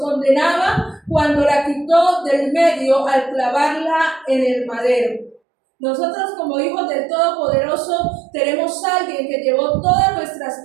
cuando la quitó del medio al clavarla en el madero. Nosotros como hijos del Todopoderoso tenemos a alguien que llevó todas nuestras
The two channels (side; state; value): left; drops out; at 5.4 s